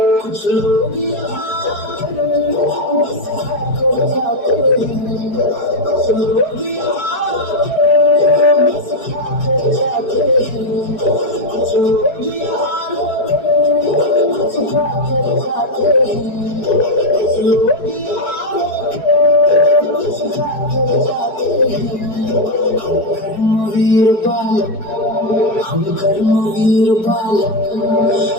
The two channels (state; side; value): late; right; 4.7 ms